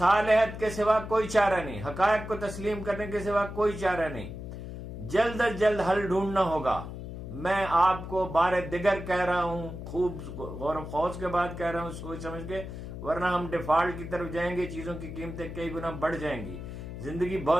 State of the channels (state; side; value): noise; left; hum, 9 dB below the sound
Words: کے سوا کوئی چارہ نہیں، حقائق کو تسلیم کرنے کے سوا کوئی چارہ نہیں. جلد از جلد حل ڈھونڈنا ہوگا. میں آپ کو بار دیگر کہہ رہا ہوں، خوب غور و خوض کے بعد کہہ رہا ہوں، سوچ سمجھ کے، ورنہ ہم ڈیفالٹ کی طرف جائیں گے، چیزوں کی قیمتیں کئی گنا بڑھ جائیں گی، زندگی